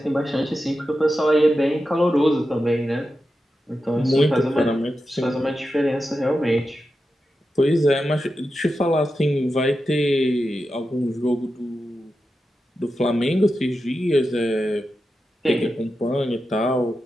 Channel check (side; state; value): both; normal; correlation 0.90